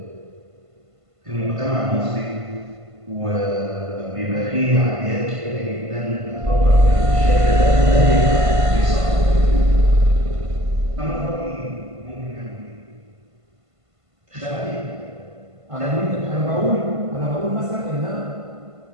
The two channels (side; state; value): left; late; 1.5 ms